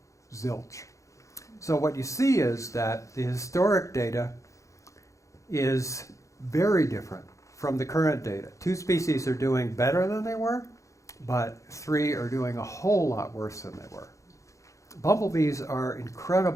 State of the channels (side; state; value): right; late; 0.15 ms